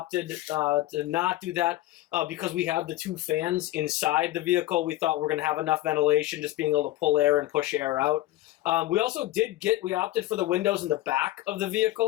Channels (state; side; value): quieter; right; 15.8 dB